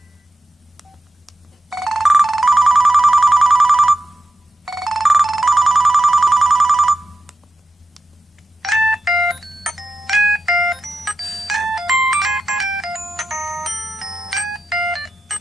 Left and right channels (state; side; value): normal; both; correlation 0.87